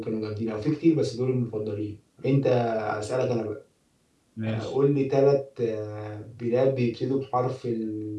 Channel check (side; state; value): both; identical; correlation 1.00